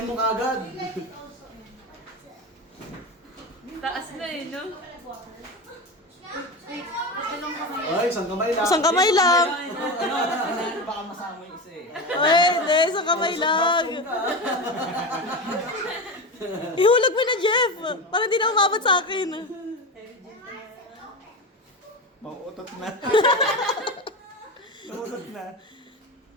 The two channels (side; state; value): both; normal; correlation 0.22